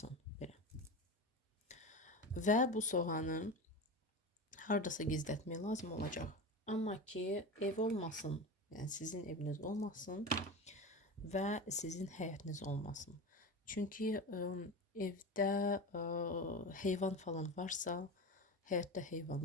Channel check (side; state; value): both; normal; correlation 0.26